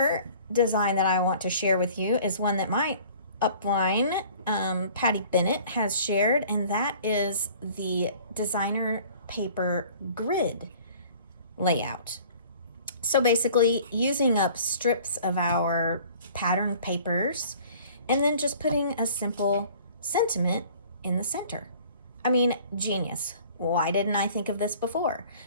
design that I want to share with you is one that my upline, Patty Bennett, has shared, and that is the designer paper grid layout. So basically using up strips of our pattern papers and then just putting a simple sentiment in the center. I mean, genius. Why didn't I think of this before?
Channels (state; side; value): inverted; both; correlation -0.49